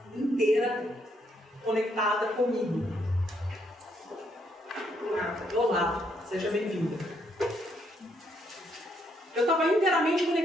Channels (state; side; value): normal; both; correlation 0.73